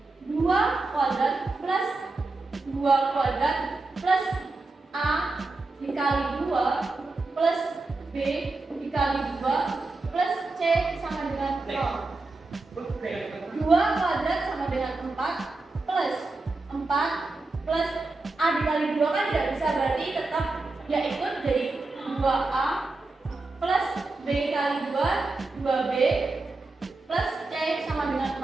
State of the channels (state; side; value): quieter; left; 3.4 dB